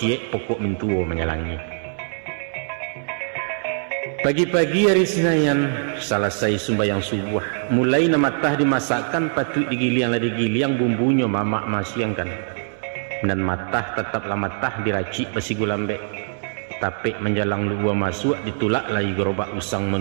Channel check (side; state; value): left; silent; 64 dB below the other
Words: pokok mintuo menyalangi. Pagi-pagi hari Senayan, selesai sembahyang subuh, mulai namatah dimasakkan patut digiliang bumbunya mamak masiangkan. Dan matah tetaplah matah diracik besi gulambek. Tapi menjalang luar masuk ditulak lagi gerobak usang